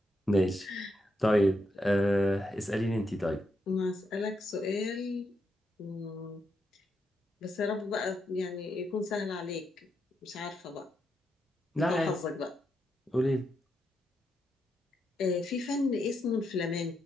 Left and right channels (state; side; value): normal; both; correlation 0.82